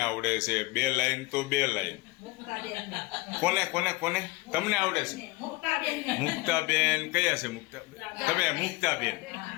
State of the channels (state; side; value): quieter; right; 22.2 dB